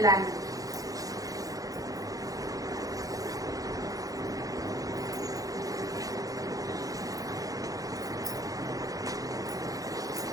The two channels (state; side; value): late; left; 0.17 ms